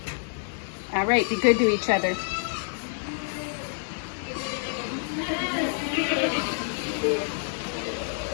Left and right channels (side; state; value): right; silent; digital silence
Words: right, be good to each other.